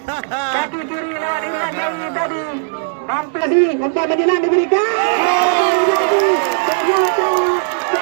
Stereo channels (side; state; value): left; silent; digital silence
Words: kaki kiri lewat Irwan Jawi tadi. Hampir sih umpan menjelang diberikan. Ternyata